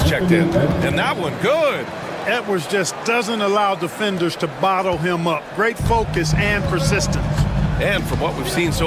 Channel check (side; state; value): both; identical; correlation 1.00